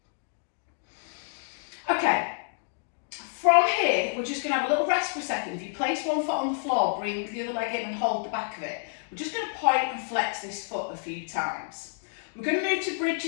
Okay, from here, we're just going to have a little rest for a second. If you place one foot on the floor, bring the other leg in and hold the back of it. We're just going to point and flex this foot a few times. We're going to move to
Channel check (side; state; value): right; silent; digital silence